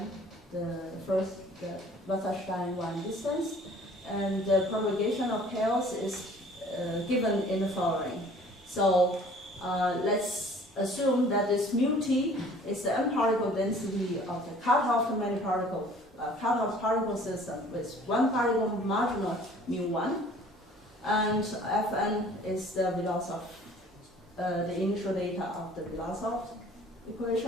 The Wasserstein one distance, and the propagation of chaos is given in the following. So let's assume that this mu t is the n-particle density of the cutoff many particle cutoff particle system with one particle marginal mu1, and Fn is the Vlasov, the initial data of the Vlasov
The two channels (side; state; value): both; normal; correlation 0.52